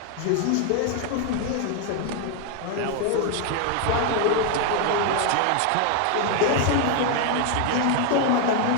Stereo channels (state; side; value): different; both; correlation 0.01